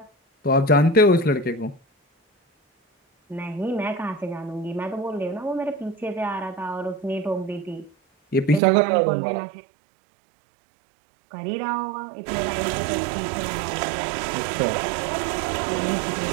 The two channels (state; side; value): drops out; left; at 8.6 s